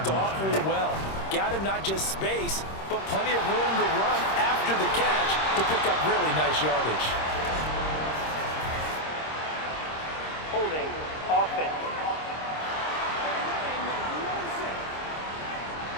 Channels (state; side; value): late; right; 26 ms